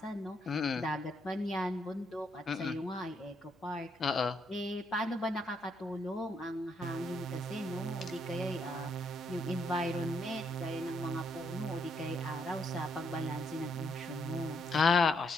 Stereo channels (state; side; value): normal; both; correlation 0.75